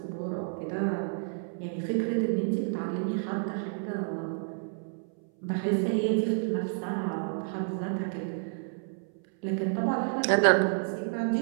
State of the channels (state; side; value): silent; left; 58 dB below the other